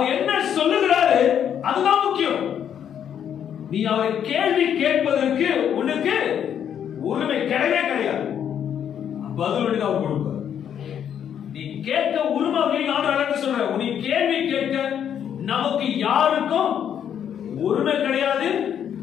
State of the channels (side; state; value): right; quieter; 9.0 dB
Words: என்ன சொல்லுகிறாரு அதுதான் முக்கியம். நீ அவரை கேள்வி கேட்பதற்கு உனக்கு உரிமை கிடையவே கிடையாது. பதில் அவர் கொடுப்பார். நீ கேட்க உரிமை சொல்ற, நீ கேள்வி கேட்க நமக்கு யாருக்கும் உரிமை கிடையாது,